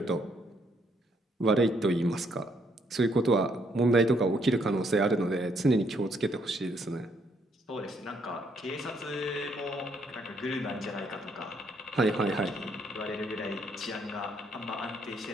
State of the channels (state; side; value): normal; both; correlation 0.71